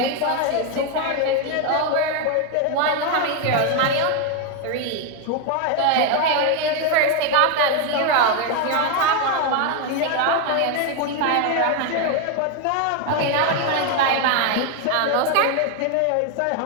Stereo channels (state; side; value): different; both; correlation 0.01